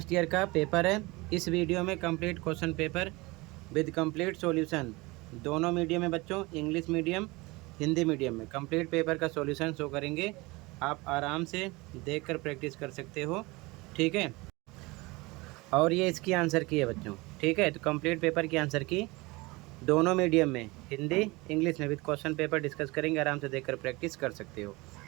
year का पेपर है। इस वीडियो में complete question paper with complete solution दोनों मीडियम में बच्चों, इंग्लिश मीडियम हिंदी मीडियम में कंप्लीट पेपर का सॉल्यूशन शो करेंगे। आप आराम से देखकर प्रैक्टिस कर सकते हो, ठीक है। और ये इसकी आंसर की है बच्चों, ठीक है। तो कंप्लीट पेपर की आंसर की दोनों मीडियम में हिंदी इंग्लिश में विद क्वेश्चन पेपर डिस्कस करेंगे। आराम से देखकर प्रैक्टिस कर सकते हो,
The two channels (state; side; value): quieter; left; 23.5 dB